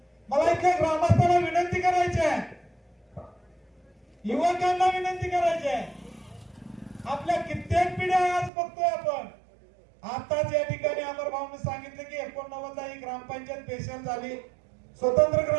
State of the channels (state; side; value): drops out; left; at 8.5 s